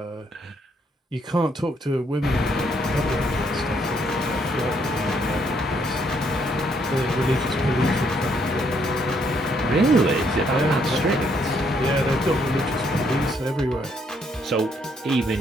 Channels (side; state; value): both; normal; correlation 0.71